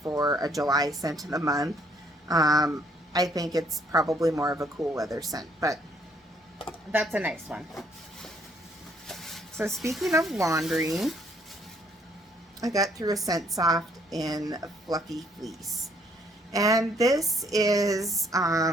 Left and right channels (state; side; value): normal; both; correlation 0.66